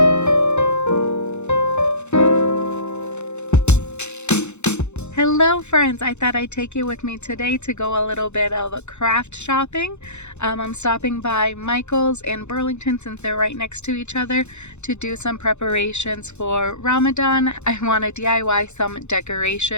friends, I thought I'd take you with me today to go a little bit of craft shopping. I'm stopping by Michael's and Burlington since they're right next to each other to do some preparations for Ramadan. I want to DIY some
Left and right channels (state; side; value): late; right; 0.82 ms